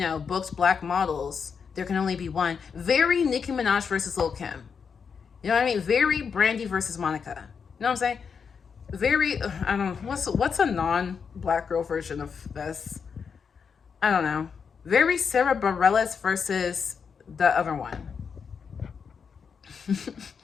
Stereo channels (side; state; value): right; quieter; 6.2 dB